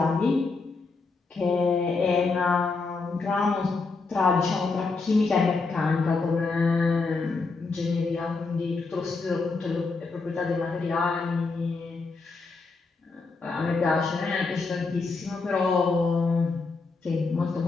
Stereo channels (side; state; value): right; quieter; 4.1 dB